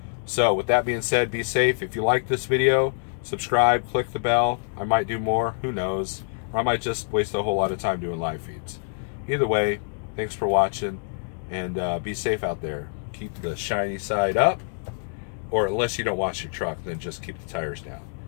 So with that being said, be safe. If you like this video, subscribe, click the bell. I might do more, who knows, or I might just waste a whole lot of time doing live feeds. Either way, thanks for watching, and be safe out there. Keep the shiny side up, or unless you don't wash your truck, then just keep the tires down.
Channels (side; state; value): right; silent; digital silence